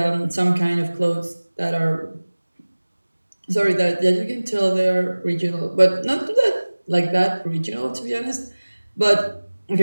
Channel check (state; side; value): inverted; both; correlation -1.00